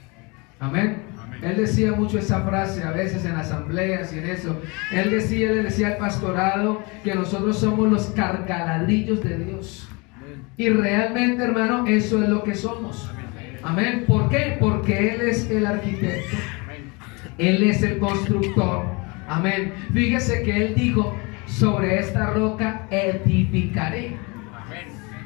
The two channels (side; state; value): right; quieter; 28.3 dB